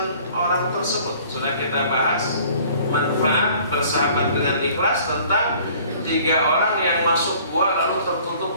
orang tersebut. Sudah kita bahas manfaat bersahabat dengan ikhlas tentang 3 orang yang masuk gua lalu tertutup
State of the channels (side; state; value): both; inverted; correlation -0.53